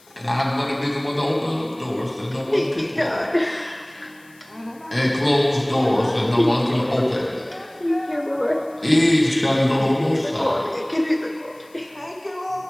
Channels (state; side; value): noise; left; hiss, 29 dB below the sound